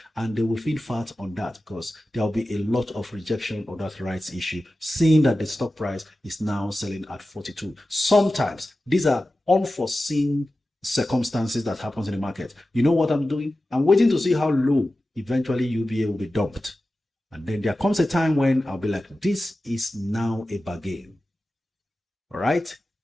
and they will feed fat on that because there will be a lot of rejection of that rights issue, seeing that the stock price is now selling at 42. Sometimes these are unforeseen circumstances that happens in the market. You know what I'm doing? I'm waiting to see how low eventually UBA will be dumped. And then there comes a time when I'll be like, this is now a bargain. All right.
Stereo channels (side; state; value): both; normal; correlation 0.94